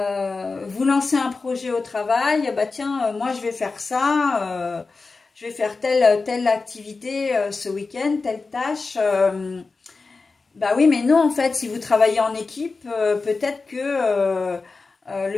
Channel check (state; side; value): quieter; right; 4.0 dB